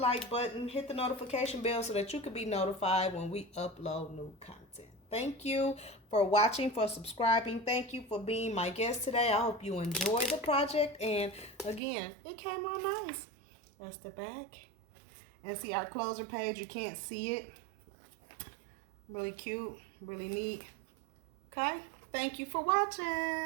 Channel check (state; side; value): drops out; left; at 11.8 s